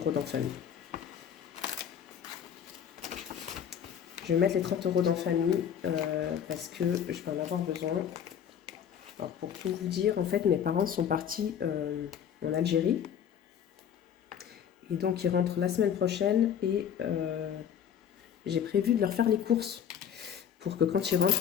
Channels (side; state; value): right; quieter; 8.6 dB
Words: dans famille. Je vais mettre les 30 € dans famille parce que je vais en avoir besoin. Alors, pour tout vous dire, en fait, mes parents sont partis en Algérie. Et donc, ils rentrent la semaine prochaine et j'ai prévu de leur faire les courses pour que quand ils rentrent,